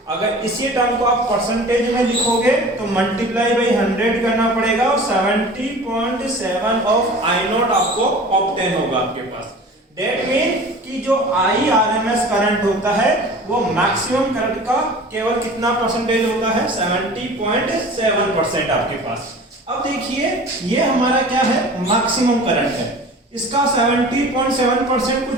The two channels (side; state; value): both; normal; correlation 0.41